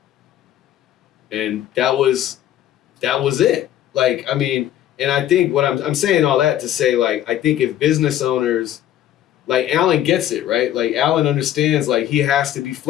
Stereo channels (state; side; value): quieter; right; 11.9 dB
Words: And that was it. Like, I mean, and I think what I'm saying all that to say, like, I think if business owners, like Alan gets it, right? Like Alan understands, like he has to be